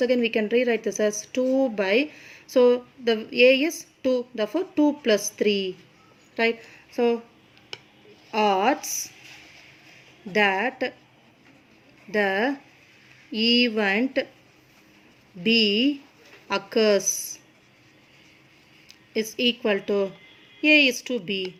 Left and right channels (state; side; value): identical; both; correlation 1.00